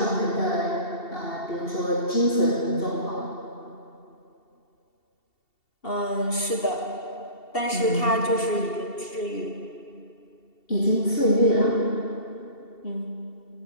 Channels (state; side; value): late; right; 2.7 ms